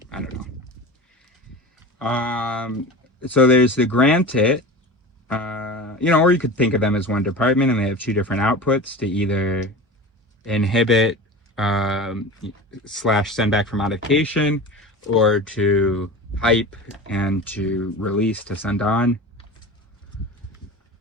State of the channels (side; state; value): both; normal; correlation 0.32